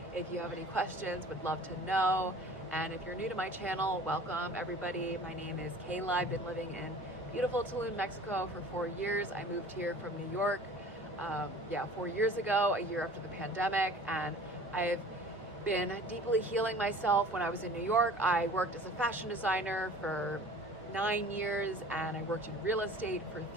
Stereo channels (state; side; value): normal; both; correlation 0.45